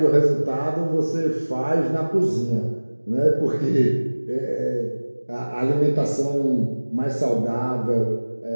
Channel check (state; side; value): inverted; both; correlation -1.00